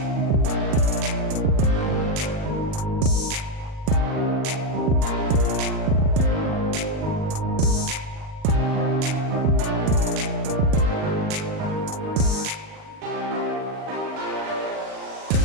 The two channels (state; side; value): late; left; 38 ms